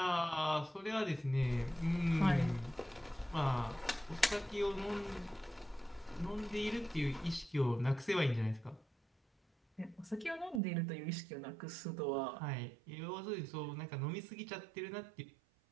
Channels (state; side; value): drops out; left; at 10.6 s